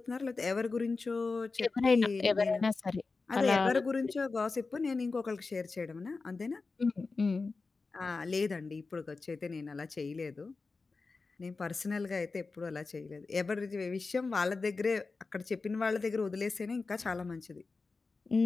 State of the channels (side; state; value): right; quieter; 4.1 dB